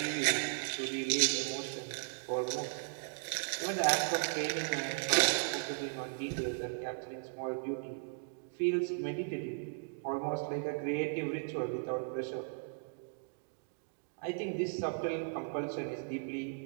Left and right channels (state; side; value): silent; left; digital silence